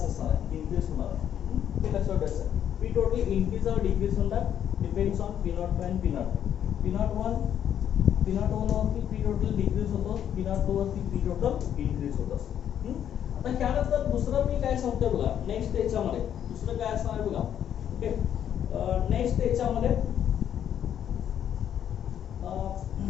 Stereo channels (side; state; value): right; quieter; 9.7 dB